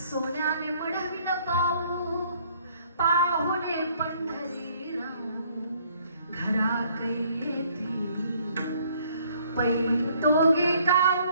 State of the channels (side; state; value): both; inverted; correlation -0.62